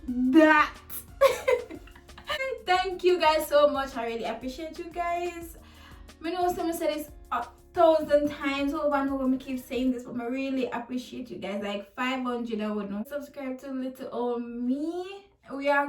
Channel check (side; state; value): both; identical; correlation 1.00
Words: Thank you guys so much. I really appreciate you guys. I know someone said this 1,000 times over and over. I keep saying this, but I really appreciate you guys. Like 500, I would know. Subscribe to little old me. We are